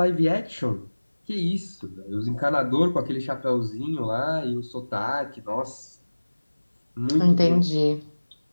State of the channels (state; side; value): inverted; both; correlation -1.00